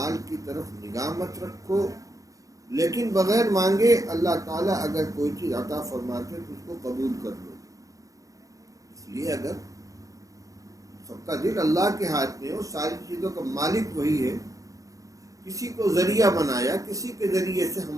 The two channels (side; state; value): left; late; 0.16 ms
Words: کی طرف نگاہ مت رکھو، لیکن بغیر مانگے اللہ تعالیٰ اگر کوئی چیز عطا فرماتے تو اس کو قبول کر لو۔ اس لیے اگر سب کا دل اللہ کے ہاتھ میں ہو، ساری چیزوں کا مالک وہی ہے، کسی کو ذریعہ بنایا، کسی کے ذریعے سے